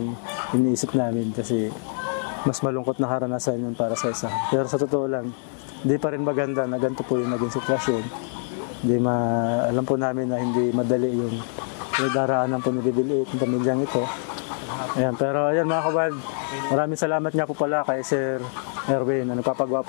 iniisip namin kasi mas malungkot na karanasan yun para sa isa. Pero sa totoo lang, hindi pa rin maganda na ganito po yung naging sitwasyon. Alam po namin na hindi madali yung daraanan po ni Bibiliit, yung pamilyang ito. Ayan, pero ayan mga kawild, maraming salamat nga po pala kay Sir Erwin na nagpapagawa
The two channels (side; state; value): right; silent; digital silence